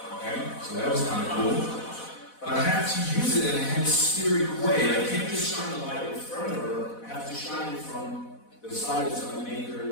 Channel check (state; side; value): late; right; 4.1 ms